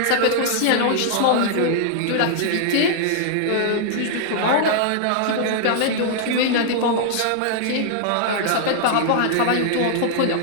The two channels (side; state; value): both; different; correlation -0.01